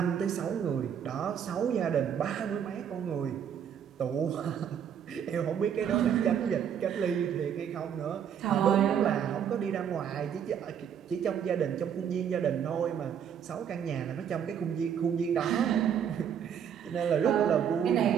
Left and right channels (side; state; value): left; quieter; 8.4 dB